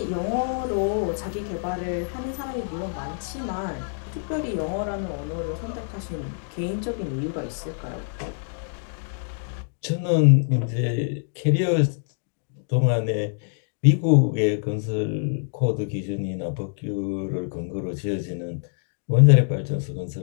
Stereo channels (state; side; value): silent; right; digital silence